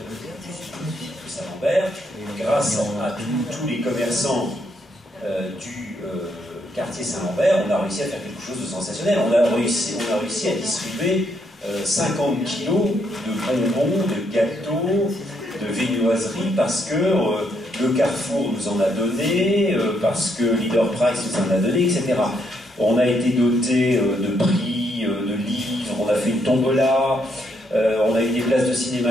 Saint-Lambert. Grâce à tous les commerçants du quartier Saint-Lambert, on a réussi à faire quelque chose de sensationnel. On a réussi à distribuer 50 kilos de bonbons, de gâteaux, de viennoiseries, parce que le Carrefour nous en a donné, parce que Leader Price nous en a donné, etc. On a été doté de prix, de livres, on a fait une tombola, on a eu des places de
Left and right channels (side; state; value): both; normal; correlation 0.75